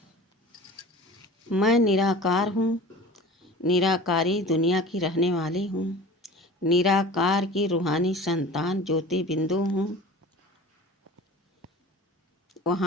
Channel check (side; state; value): both; normal; correlation 0.39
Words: मैं निराकार हूँ, निराकारी दुनिया की रहने वाली हूँ, निराकार की रूहानी संतान ज्योति बिंदु हूँ।